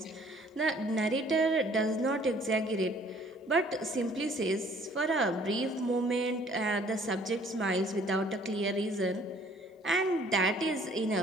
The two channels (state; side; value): normal; both; correlation 0.57